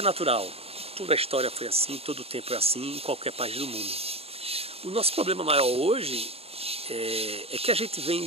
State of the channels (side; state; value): left; late; 0.29 ms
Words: natural. Toda a história foi assim, todo o tempo é assim, em qualquer país do mundo. O nosso problema maior hoje é que a gente vem